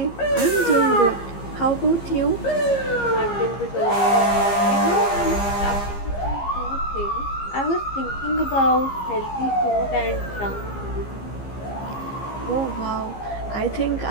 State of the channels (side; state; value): right; late; 15 ms